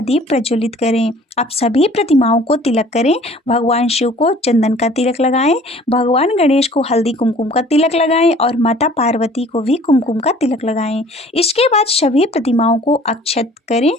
दीप प्रज्वलित करें। अब सभी प्रतिमाओं को तिलक करें। भगवान शिव को चंदन का तिलक लगाएं, भगवान गणेश को हल्दी कुमकुम का तिलक लगाएं और माता पार्वती को भी कुमकुम का तिलक लगाएं। इसके बाद सभी प्रतिमाओं को अक्षत करें।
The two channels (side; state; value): both; normal; correlation 0.51